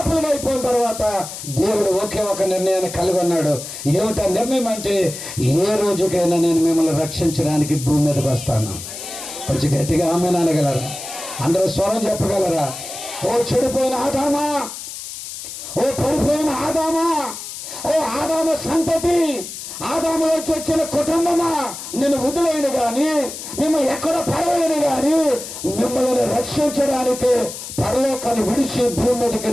అయిపోయిన తర్వాత దేవుడు ఒకే ఒక నిర్ణయాన్ని కలిగి ఉన్నాడు. ఏమిటా నిర్ణయం అంటే, ఏ రోజుకైనా నేను మిమ్మల్ని రక్షించడానికి భూమి మీదకి వస్తాను. కొంచెం గట్టిగా ఆమె అనగలరా? అందరూ స్వరం చెప్పగలరా? ఓ చెడిపోయిన ఆదామా, ఓ పడిపోయిన ఆదామా, ఓ ఆదాము సంతతి, ఆదాములోకి వచ్చిన కుటుంబమా, నేను వదిలేను కానీ, మిమ్మల్ని ఎక్కడ పడవేయను కానీ, మిమ్మల్ని రక్షించడానికి పరలోకాన్ని విడిచి భూమి మీదకి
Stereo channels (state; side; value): noise; left; hiss, 10 dB below the sound